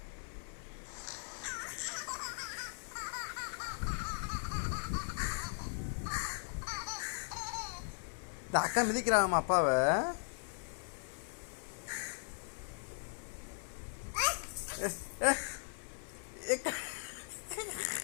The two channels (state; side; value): silent; right; 52 dB below the other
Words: இந்த அக்கா மிதிக்கிறாங்கம்மா அப்பாவை.